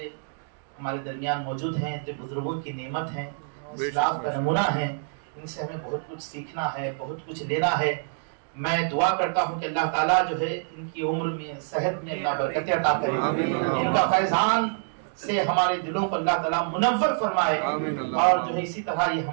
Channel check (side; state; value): left; silent; digital silence